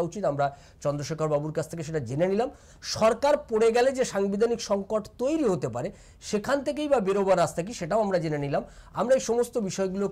উচিত, আমরা চন্দ্রশেখর বাবুর কাছ থেকে সেটা জেনে নিলাম। সরকার পড়ে গেলে যে সাংবিধানিক সংকট তৈরি হতে পারে সেখান থেকেই বা বেরোবার রাস্তা কি, সেটাও আমরা জেনে নিলাম। আমরা এই সমস্ত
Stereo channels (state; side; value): identical; both; correlation 1.00